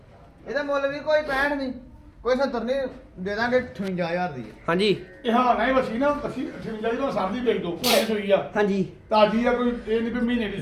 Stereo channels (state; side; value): identical; both; correlation 1.00